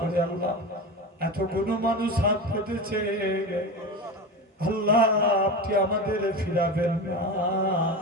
আল্লাহ এতগুলো মানুষ হাত পেতেছে, আল্লাহ আপনি আমাদের ফিরাবেন না।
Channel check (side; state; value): both; normal; correlation 0.25